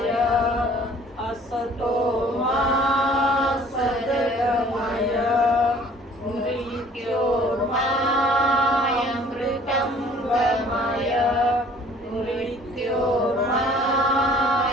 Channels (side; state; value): both; normal; correlation 0.53